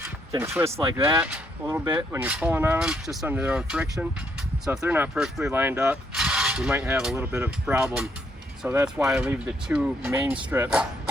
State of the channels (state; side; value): normal; both; correlation 0.72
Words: can twist like that a little bit when you're pulling on them, just under their own friction. So if they're not perfectly lined up, you might have a little bit of a problem. So that's why I leave the 2 main strips